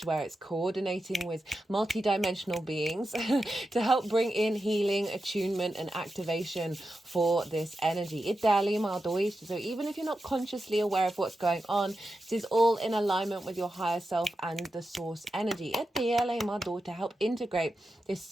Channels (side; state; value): both; normal; correlation 0.90